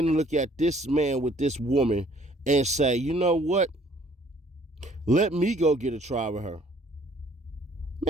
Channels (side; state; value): both; normal; correlation 0.60